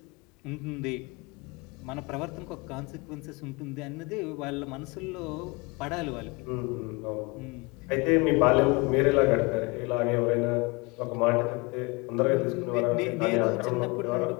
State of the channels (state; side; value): quieter; right; 27.3 dB